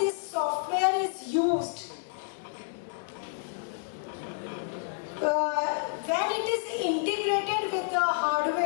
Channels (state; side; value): silent; right; digital silence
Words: software is used, when it is integrated with the